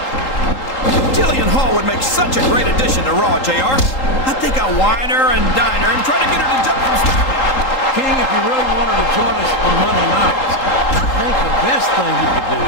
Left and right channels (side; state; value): right; late; 3.8 ms